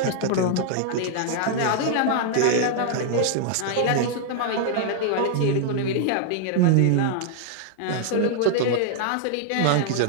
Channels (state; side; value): different; both; correlation -0.01